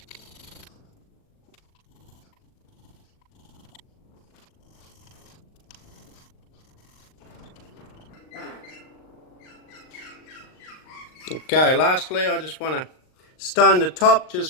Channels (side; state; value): right; late; 39 ms